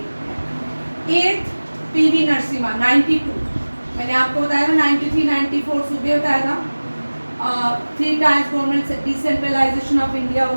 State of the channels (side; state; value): both; inverted; correlation -1.00